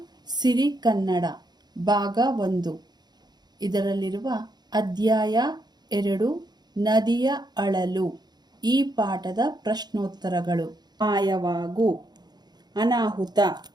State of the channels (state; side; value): late; left; 0.20 ms